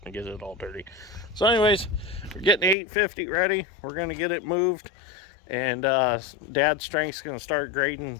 and get it all dirty. So anyways, we're getting the 850 ready. We're going to get it moved. And Dad's strength's going to start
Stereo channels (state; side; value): drops out; right; at 2.8 s